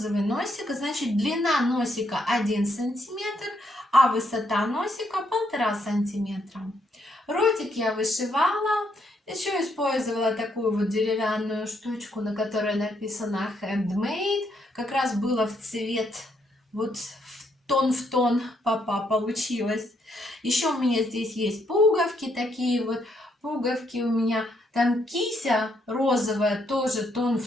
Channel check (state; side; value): normal; both; correlation 0.74